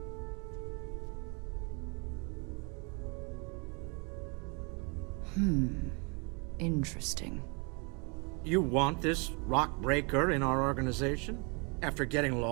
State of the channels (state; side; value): quieter; left; 33.2 dB